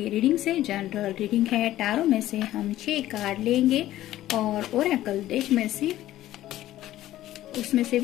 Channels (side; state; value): right; quieter; 14.2 dB